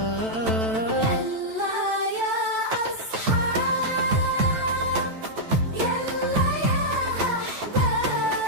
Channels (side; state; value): left; late; 9.0 ms